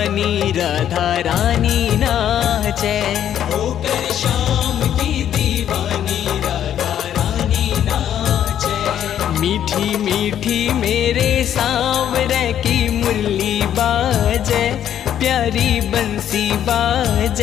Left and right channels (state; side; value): quieter; right; 10.3 dB